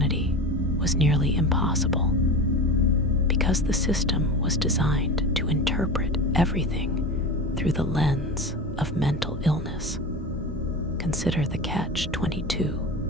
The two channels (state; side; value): normal; both; correlation 0.28